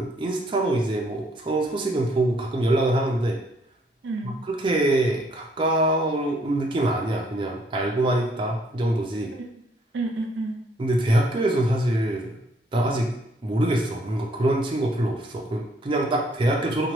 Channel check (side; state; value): both; normal; correlation 0.66